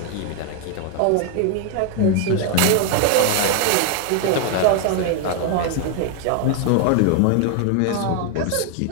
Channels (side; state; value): both; different; correlation 0.00